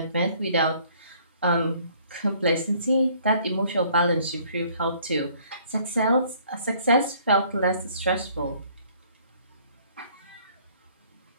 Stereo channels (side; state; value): both; inverted; correlation -0.59